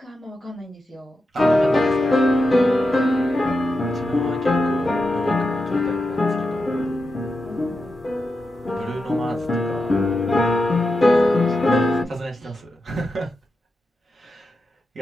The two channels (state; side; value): normal; both; correlation 0.89